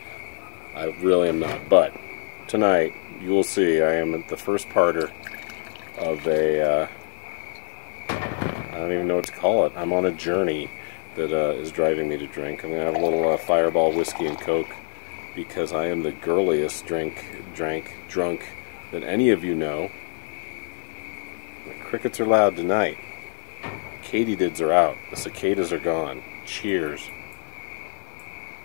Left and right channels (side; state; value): right; silent; 62 dB below the other